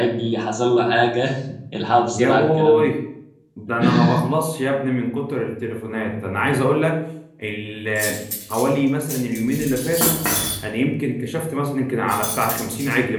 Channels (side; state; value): both; identical; correlation 1.00